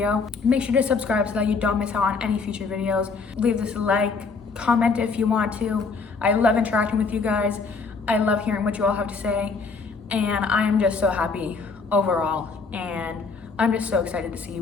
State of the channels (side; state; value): right; quieter; 4.6 dB